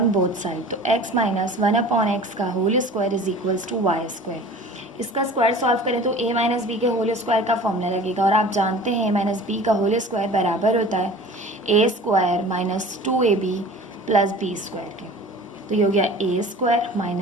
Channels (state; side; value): normal; both; correlation 0.42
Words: both side, तो x माइनस 1/x का whole square is equals to y square. इसका स्क्वायर सॉल्व करें तो a माइनस बी के होल स्क्वायर का फॉर्मूला लगेगा, और आप जानते हैं a माइनस बी का होल स्क्वायर बराबर होता है a square minus 2ab plus B square के। तो ये हो गया a स्क्वायर